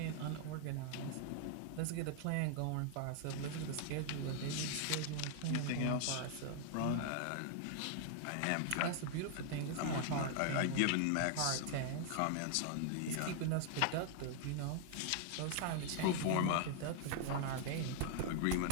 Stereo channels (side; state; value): both; different; correlation 0.00